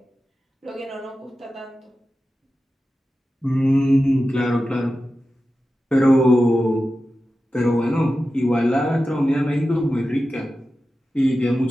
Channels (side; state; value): both; normal; correlation 0.93